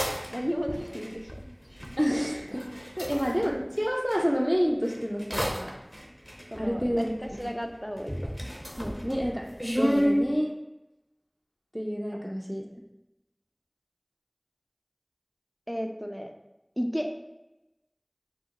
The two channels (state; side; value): identical; both; correlation 1.00